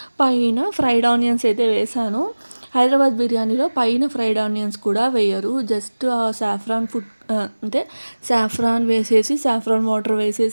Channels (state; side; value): inverted; both; correlation -1.00